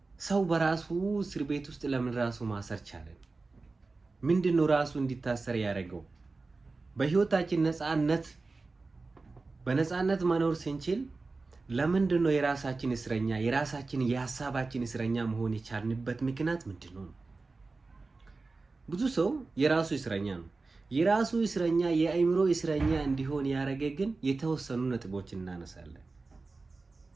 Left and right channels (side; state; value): left; quieter; 3.7 dB